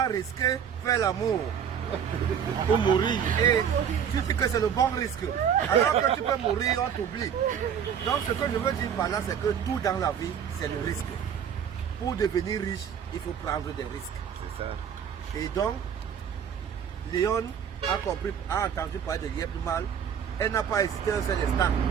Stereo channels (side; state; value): left; quieter; 8.1 dB